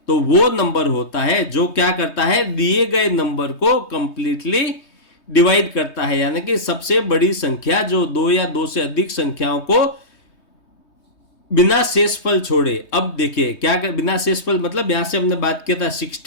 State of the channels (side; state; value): right; late; 3.2 ms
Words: तो वो नंबर होता है जो क्या करता है, दिए गए नंबर को कंप्लीटली डिवाइड करता है, यानी कि सबसे बड़ी संख्या जो 2 या 2 से अधिक संख्याओं को बिना शेषफल छोड़े। अब देखिए क्या कर, बिना शेषफल मतलब यहां से हमने बात किया था